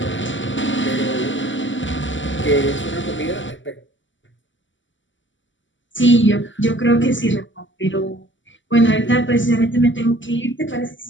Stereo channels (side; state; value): right; late; 0.55 ms